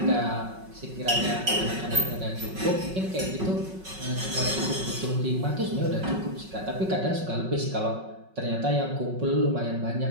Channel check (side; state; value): left; late; 5.4 ms